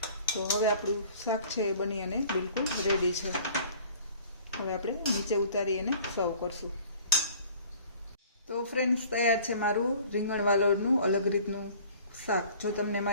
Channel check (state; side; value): inverted; both; correlation -0.49